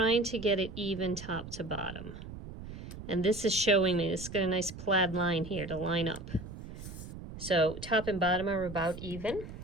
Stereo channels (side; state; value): right; noise; rumble, 12 dB below the sound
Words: to get it even top to bottom. And this is showing me, it's got a nice plaid line here to line up. So top and bottom are about even.